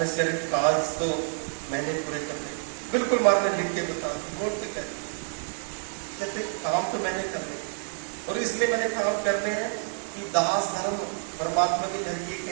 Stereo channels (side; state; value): left; silent; 56 dB below the other